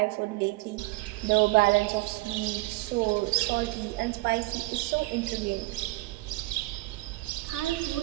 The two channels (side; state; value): left; quieter; 21.1 dB